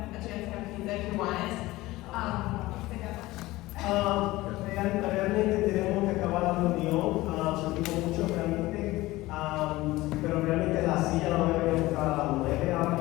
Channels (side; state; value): right; quieter; 18.7 dB